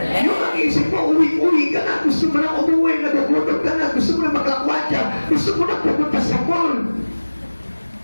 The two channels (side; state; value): both; inverted; correlation -1.00